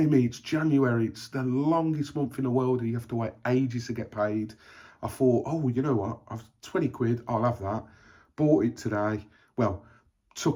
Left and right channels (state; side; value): identical; both; correlation 1.00